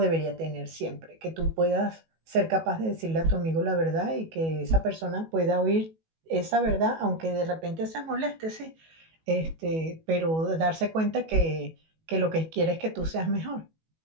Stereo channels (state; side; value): late; left; 19 ms